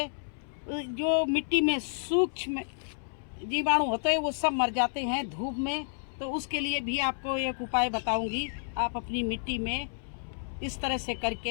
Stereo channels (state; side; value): silent; right; 58 dB below the other